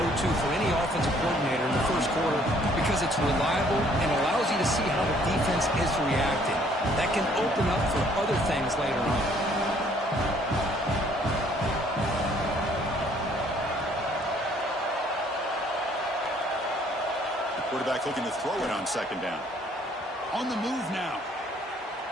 for any offensive coordinator in the first quarter because it's reliable and allows you to see how the defense is reacting. That can open up for other things later on. The quarterback looking to throw it on second down. On the move now.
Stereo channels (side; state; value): both; normal; correlation 0.62